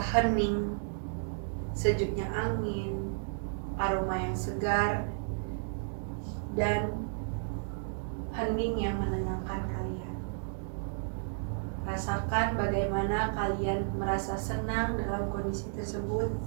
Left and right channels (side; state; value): left; silent; digital silence